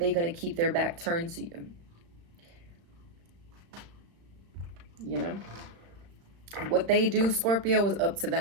going to keep their back turned to you? you know? What they do, Scorpio, is up to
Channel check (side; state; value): left; late; 35 ms